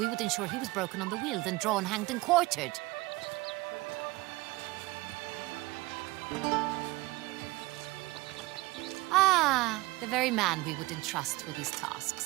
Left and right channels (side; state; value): left; quieter; 21.1 dB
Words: would ensure he was broken on the wheel, then drawn, hanged, and quartered. Ah, the very man we would entrust with these